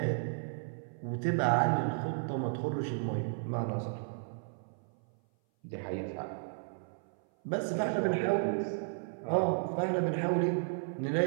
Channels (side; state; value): left; silent; 55 dB below the other